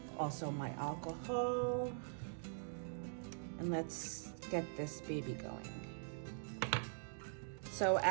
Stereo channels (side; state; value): left; silent; digital silence